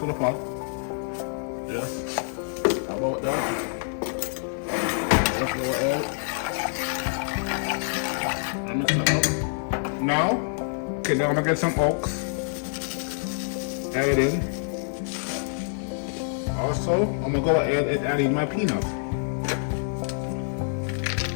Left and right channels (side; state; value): right; silent; 61 dB below the other